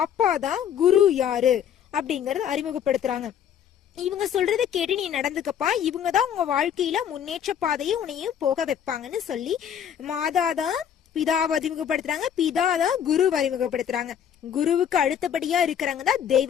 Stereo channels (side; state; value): right; quieter; 8.9 dB